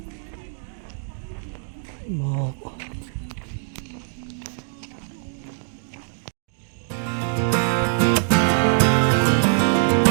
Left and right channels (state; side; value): silent; left; digital silence